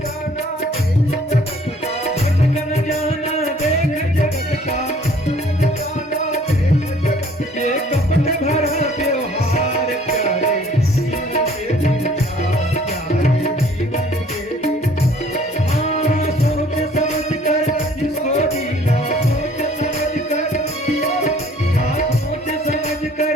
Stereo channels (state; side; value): normal; both; correlation 0.56